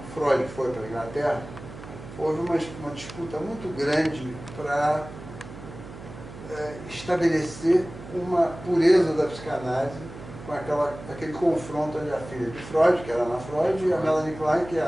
Freud foi para a Inglaterra, houve uma disputa muito grande para estabelecer uma pureza da psicanálise com aquele confronto entre a filha de Freud, que era Ana Freud, e a Melanie Klein, que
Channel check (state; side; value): noise; right; hum, 14 dB below the sound